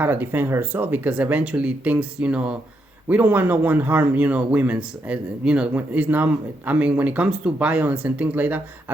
to defend herself, because eventually things, we don't want no one harm, women's, it's not. I mean, when it comes to violence and things like that,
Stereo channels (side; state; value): both; normal; correlation 0.80